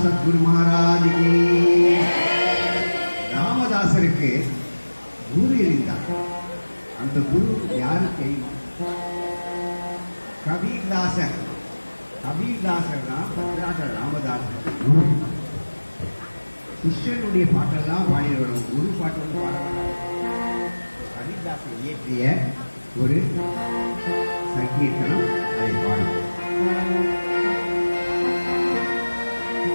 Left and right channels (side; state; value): both; inverted; correlation -1.00